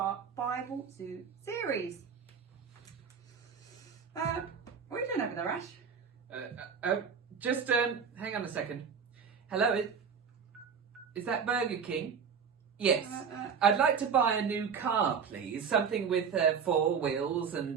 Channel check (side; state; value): left; quieter; 6.6 dB